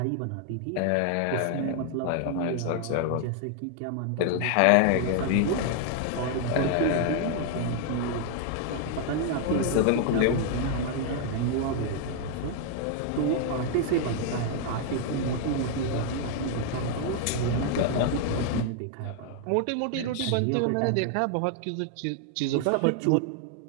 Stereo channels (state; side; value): different; both; correlation 0.00